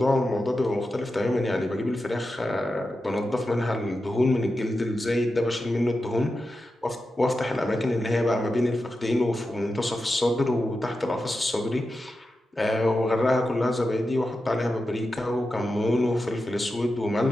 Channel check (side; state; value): both; normal; correlation 0.90